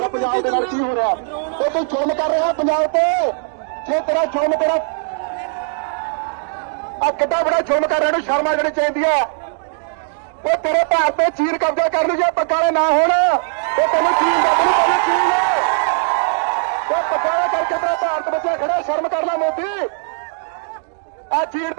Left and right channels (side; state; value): left; silent; digital silence